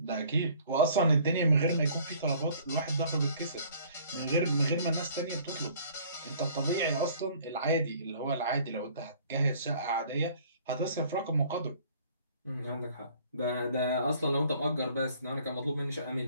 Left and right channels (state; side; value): inverted; both; correlation -0.55